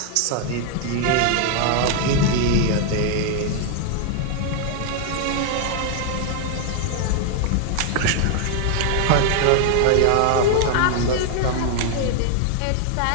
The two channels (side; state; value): both; different; correlation 0.00